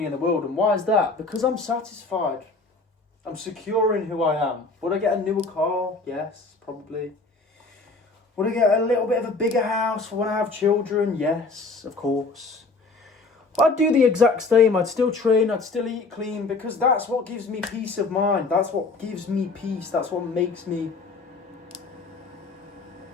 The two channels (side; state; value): right; quieter; 3.7 dB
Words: in the world. And why is that? Because I'm satisfied. I'm secure in who I am. Would I get a newer car? Yes, probably. Would I get a little bit of a bigger house for when I have children? Yes, of course. I'd do the exact same. I'd still train. I'd still eat clean, because that's what gives me peace of mind. That's what gives me peace. That's what makes me